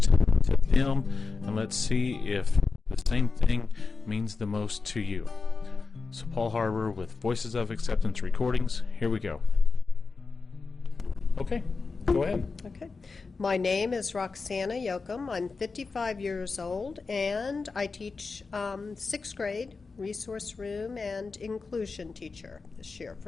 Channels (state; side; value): quieter; right; 4.4 dB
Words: to them, and let's see if the same thing means the most to you. So Paul Harbour with Voices of Acceptance Recordings. Here we go. Okay, go ahead. Okay. My name is Roxanna Yocom. I'm 55 years old, and I teach 6th grade, resource room, and inclusion teacher this year